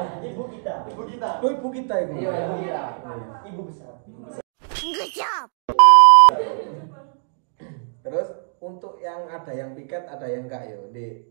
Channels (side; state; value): left; silent; digital silence